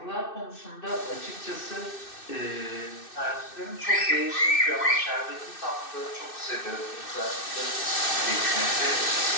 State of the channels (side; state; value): right; late; 2.6 ms